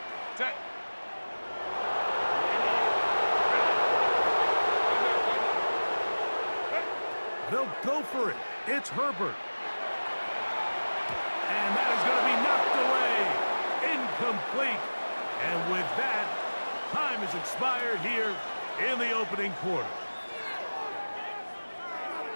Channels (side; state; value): both; inverted; correlation -1.00